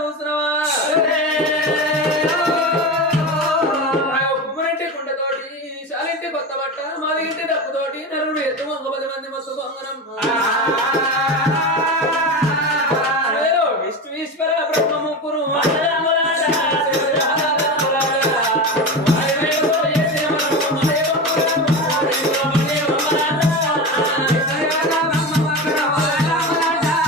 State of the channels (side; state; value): both; normal; correlation 0.23